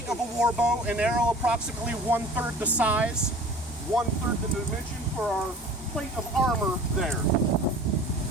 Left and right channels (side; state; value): both; normal; correlation 0.44